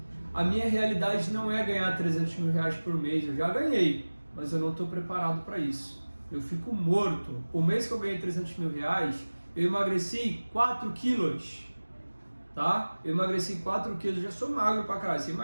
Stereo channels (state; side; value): inverted; both; correlation -1.00